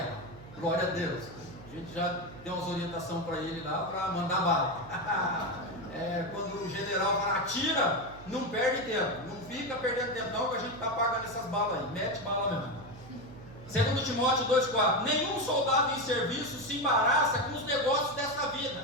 glória a Deus. A gente já deu umas orientações para ele lá, para mandar bala. Quando o general fala, atira, não perde tempo, não fica perdendo tempo não, que a gente está pagando essas balas aí, mete bala mesmo. 2 Timóteo 2,4. Nenhum soldado em serviço se embaraça com os negócios dessa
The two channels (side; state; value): right; noise; hum, 18 dB below the sound